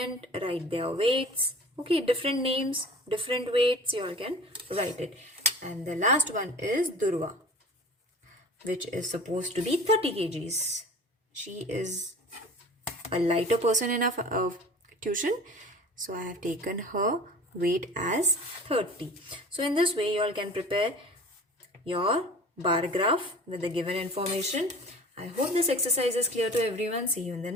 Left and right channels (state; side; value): normal; both; correlation 0.41